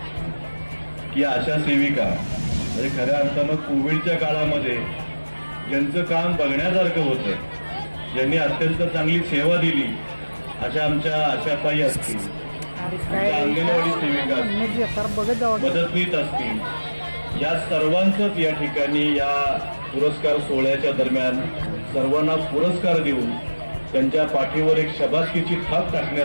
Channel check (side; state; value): both; inverted; correlation -1.00